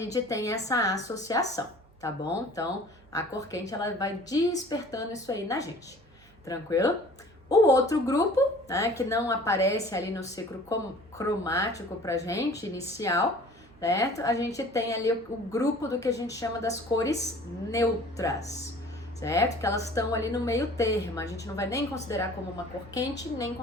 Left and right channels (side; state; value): right; noise; hum, 28 dB below the sound